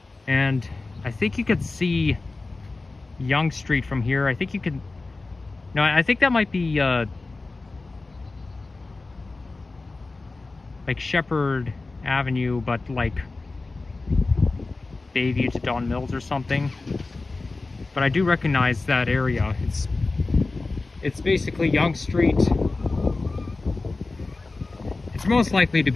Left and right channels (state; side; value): quieter; right; 3.5 dB